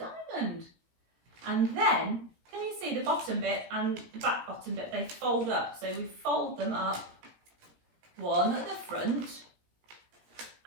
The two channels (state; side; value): late; left; 18 ms